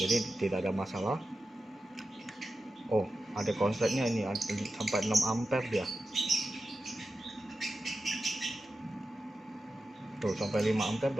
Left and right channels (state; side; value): normal; both; correlation 0.92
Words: tidak ada masalah. Oh, ada konsletnya ini sampai 6 ampere dia. Tuh, sampai 5 ampere